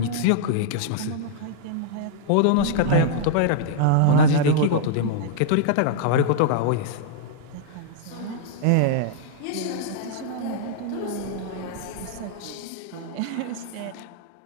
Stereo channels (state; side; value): different; both; correlation -0.01